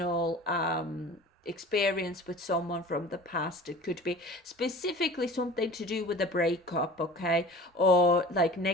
experience with someone from the past. It could be specifically something to do with a breakup, okay, or like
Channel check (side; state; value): both; normal; correlation 0.41